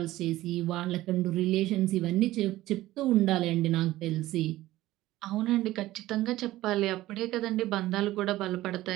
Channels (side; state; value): left; quieter; 16.2 dB